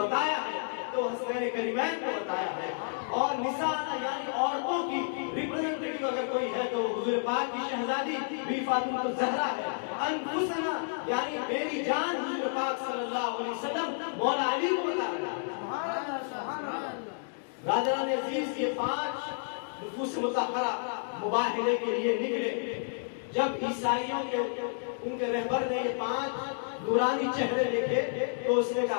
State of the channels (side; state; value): right; silent; digital silence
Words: ہے تو حسنین کریمین کو بتایا ہے. اور نساءنا یعنی عورتوں کی ریپرزنٹیٹیو اگر کوئی ہے تو حضور پاک کی شہزادی بی فاطمہ الزہرا ہے. انفسنا یعنی میری جان حضور پاک صلی اللہ علیہ وسلم مولا علی کو بتا رہا ہے. برادران عزیز یہ 5 نفوس مطہرہ مباہلے کے لیے نکلے. جب عیسائیوں کے ان کے رہبر نے یہ 5 نورانی چہرے دیکھے تو اس نے